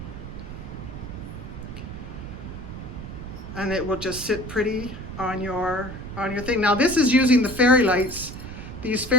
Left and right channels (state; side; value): noise; right; rumble, 10 dB below the sound